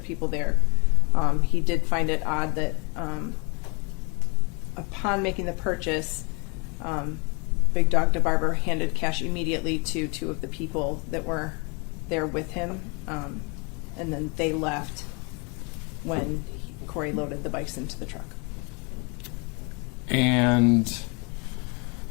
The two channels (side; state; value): right; quieter; 31.8 dB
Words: people there, he did find it odd that upon making the purchase, Big Dog DeBarber handed cash immediately to two of the people that were there with him, and then they left when Corey loaded the bikes into the truck. And